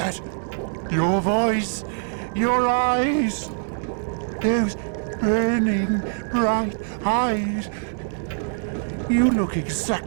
Your voice, your eyes, those burning bright eyes. You look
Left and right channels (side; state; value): left; silent; 58 dB below the other